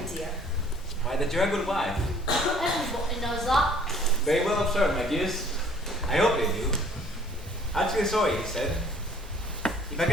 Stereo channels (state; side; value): normal; both; correlation 0.56